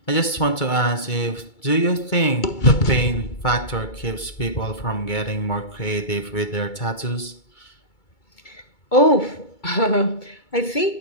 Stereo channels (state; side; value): late; right; 2.2 ms